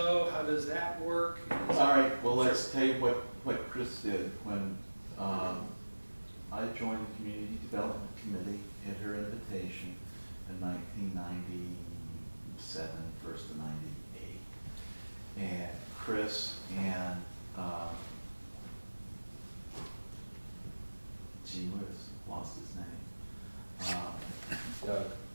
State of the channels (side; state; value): both; inverted; correlation -1.00